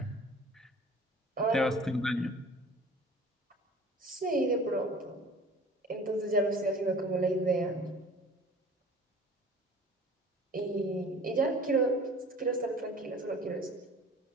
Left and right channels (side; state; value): both; normal; correlation 0.45